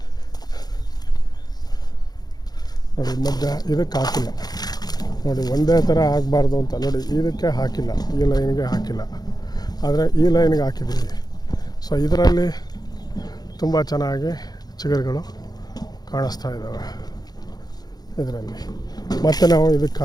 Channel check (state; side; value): late; right; 0.19 ms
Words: ನೋಡಿ, ಮಧ್ಯ ಇದಕ್ಕೆ ಹಾಕಿಲ್ಲ, ನೋಡಿ ಒಂದೇ ಥರ ಆಗಬಾರ್ದು ಅಂತ ನೋಡಿ ಇದಕ್ಕೆ ಹಾಕಿಲ್ಲ, ಈ ಲೈನ್ಗೆ ಹಾಕಿಲ್ಲ, ಆದರೆ ಈ ಲೈನ್ಗೆ ಹಾಕಿದ್ದೀವಿ. ಸೊ ಇದರಲ್ಲಿ ತುಂಬ ಚೆನ್ನಾಗಿ ಚಿಗುರುಗಳು ಕಾಣಿಸ್ತಾ ಇದ್ದಾವೆ ಇದರಲ್ಲಿ. ಮತ್ತು ನಾವು ಇದಕ್ಕೆ